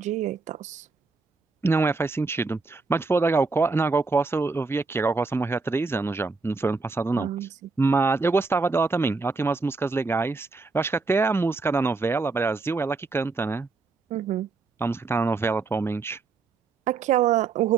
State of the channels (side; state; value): left; quieter; 4.2 dB